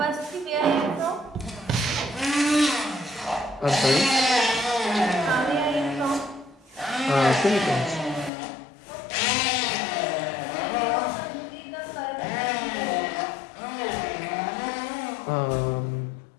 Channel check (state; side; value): drops out; right; at 8.3 s